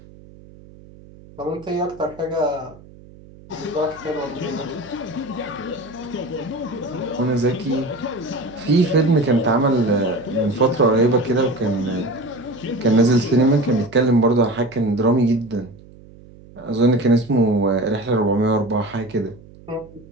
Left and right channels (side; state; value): right; noise; hum, 22 dB below the sound